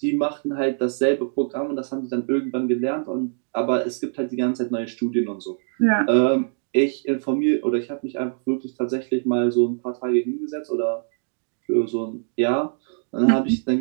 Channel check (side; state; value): left; silent; digital silence